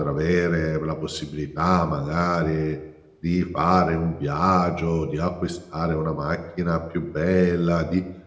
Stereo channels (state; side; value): identical; both; correlation 1.00